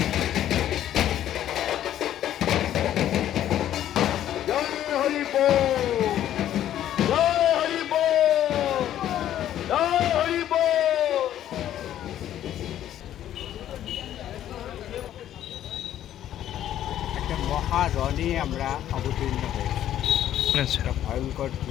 একটা মহারণে আমরা অবতীর্ণ হয়েছি। একটা ভয়ঙ্কর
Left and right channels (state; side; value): quieter; right; 11.7 dB